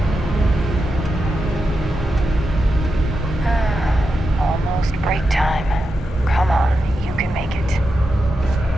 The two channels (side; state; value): both; normal; correlation 0.88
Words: Almost break time. Come on, you can make it.